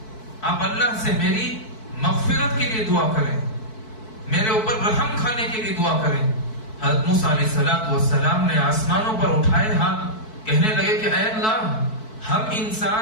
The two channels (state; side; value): late; right; 4.6 ms